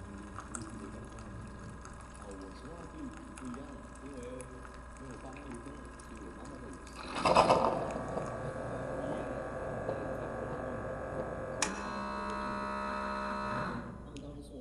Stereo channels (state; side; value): identical; both; correlation 1.00